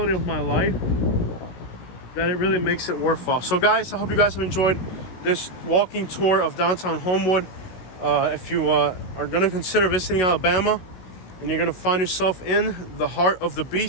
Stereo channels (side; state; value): right; late; 16 ms